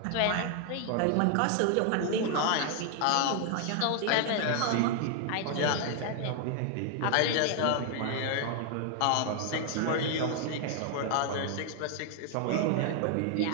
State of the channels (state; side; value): different; both; correlation 0.00